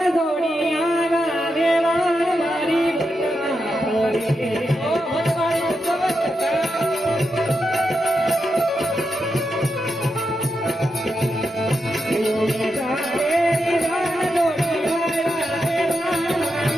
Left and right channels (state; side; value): normal; both; correlation 0.86